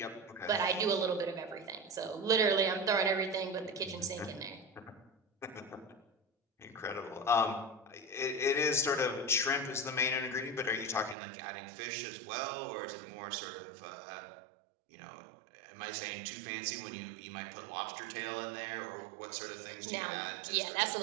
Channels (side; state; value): left; drops out; at 11.2 s